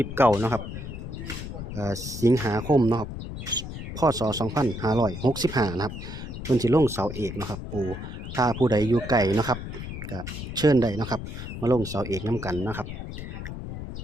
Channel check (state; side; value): noise; left; rumble, 8 dB below the sound